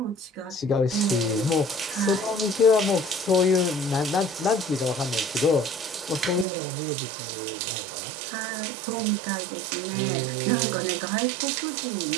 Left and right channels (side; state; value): left; drops out; at 6.5 s